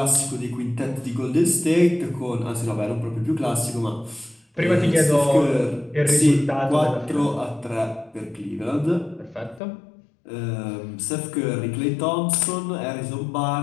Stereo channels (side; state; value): right; drops out; at 9.6 s